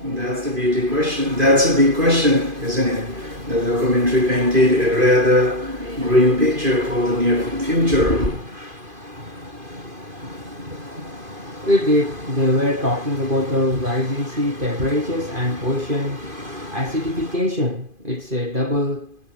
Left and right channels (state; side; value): late; left; 2.5 ms